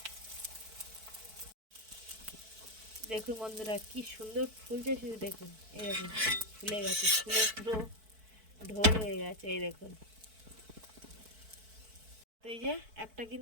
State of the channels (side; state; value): left; late; 4.6 ms